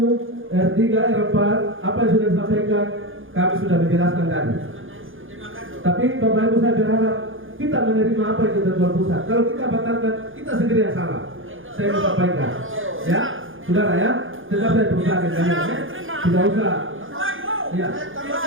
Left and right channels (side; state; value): left; late; 0.58 ms